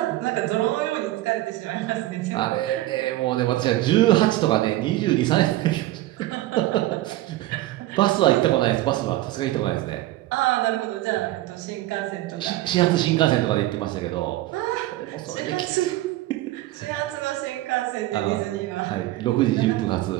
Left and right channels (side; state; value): left; quieter; 16.4 dB